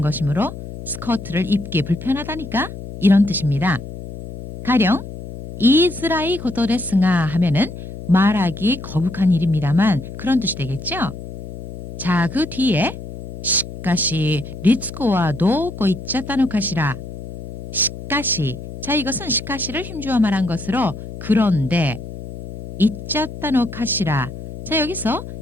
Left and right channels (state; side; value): noise; left; hum, 10 dB below the sound